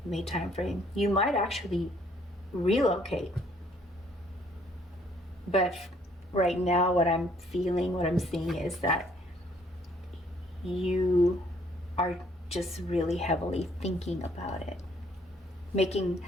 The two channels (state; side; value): normal; both; correlation 0.64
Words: time frame. You might actually relocate. But right now, what I'm feeling, what I'm seeing is that you are just really heavily thinking about it.